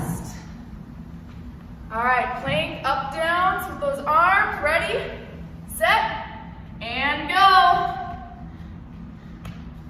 All right, plank up, downs with those arms. Ready, set, and go.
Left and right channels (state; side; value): identical; both; correlation 1.00